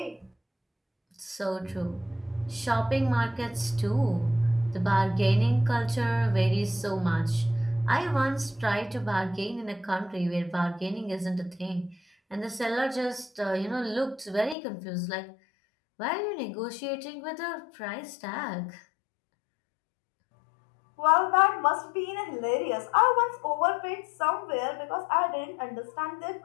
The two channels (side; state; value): right; drops out; at 14.6 s